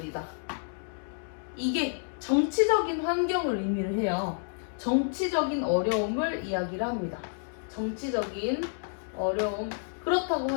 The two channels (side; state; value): right; silent; digital silence